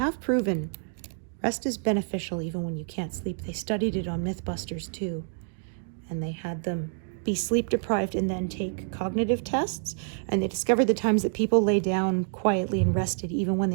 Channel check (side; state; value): left; silent; digital silence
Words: proven rest is beneficial even when you can't sleep. They studied it on Mythbusters too, and they had them be sleep deprived and then take cognitive tests, and they discovered the times that people lay down quietly and rested even when